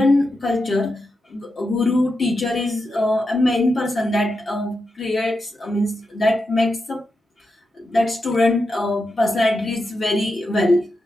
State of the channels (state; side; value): normal; both; correlation 0.87